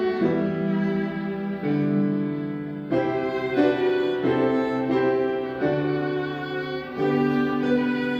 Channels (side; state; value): both; identical; correlation 1.00